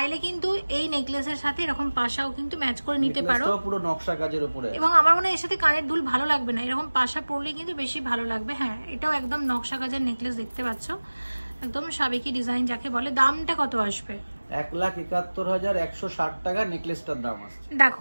কিন্তু এই নেকলেসের সাথে এরকম পাশাও কিন্তু ম্যাচ করে নিতে পারো, পুরো নকশা কাজের উপরে। এবং আমার মনে হয় এর সাথে কানের দুল ভালো লাগবে না, এরকম পাশা পরলে কিন্তু বেশি ভালো লাগবে। হ্যাঁ, এটাও একদম নকশা কাজের নেকলেস, দেখতে পাচ্ছ, একদম সাবেকি ডিজাইন যাকে বলে। দামটা কত আসবে? 1,71,160 টাকা নেকলেসটার দাম আসছে।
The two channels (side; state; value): both; inverted; correlation -1.00